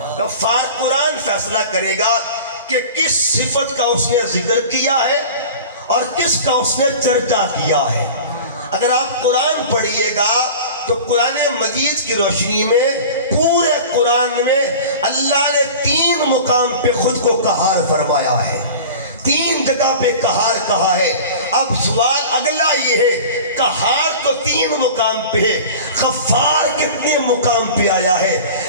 غفار. قرآن فیصلہ کرے گا کہ کس صفت کا اس نے ذکر کیا ہے اور کس کا اس نے چرچا کیا ہے. اگر آپ قرآن پڑھیے گا تو قرآن مجید کی روشنی میں پورے قرآن میں اللہ نے 3 مقام پہ خود کو قہار فرمایا ہے، 3 جگہ پہ قہار کہا ہے. اب سوال اگلا یہ ہے قہار تو 3 مقام پہ ہے، غفار کتنے مقام پہ آیا ہے؟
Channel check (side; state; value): both; inverted; correlation -0.37